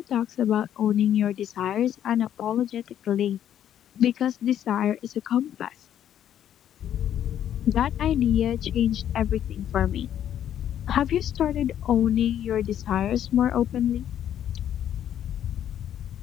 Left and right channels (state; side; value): quieter; right; 10.4 dB